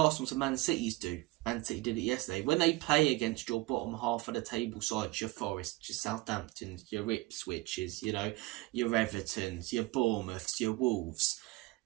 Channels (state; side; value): quieter; left; 21.1 dB